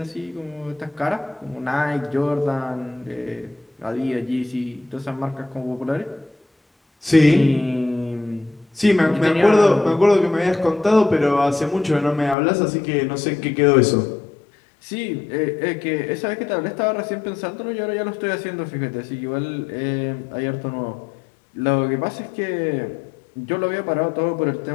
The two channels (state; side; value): drops out; right; at 12.4 s